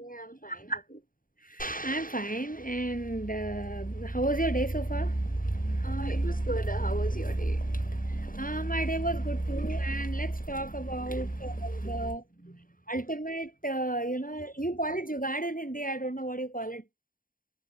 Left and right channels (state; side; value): late; right; 0.40 ms